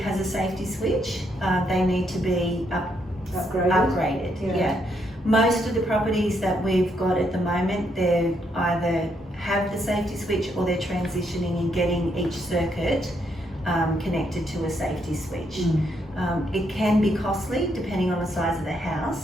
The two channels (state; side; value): normal; both; correlation 0.75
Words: a safety switch. They need to be upgraded. Yeah. Most of the properties that we've got at the moment, they either have the safety switch or they're transitioning and getting each circuit connected to a safety switch. It can be costly depending on the size of the